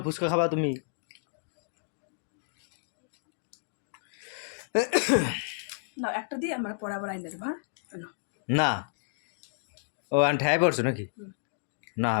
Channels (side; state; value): right; silent; digital silence